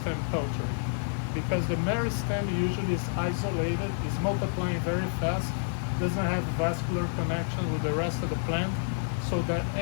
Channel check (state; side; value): silent; right; 59 dB below the other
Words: culture, because the meristem usually is isolated, is multiplying very fast, doesn't have vascular connection with the rest of the plant, so that